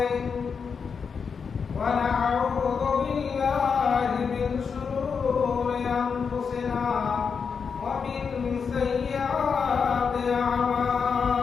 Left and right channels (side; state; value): right; quieter; 5.9 dB